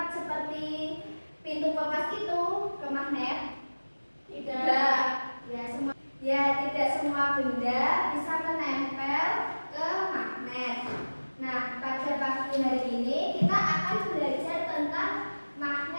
seperti pintu kulkas itu ke magnet? Tidak. Tidak semua benda bisa menempel ke magnet. Nah, pada pagi hari ini kita akan belajar tentang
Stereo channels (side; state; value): both; inverted; correlation -1.00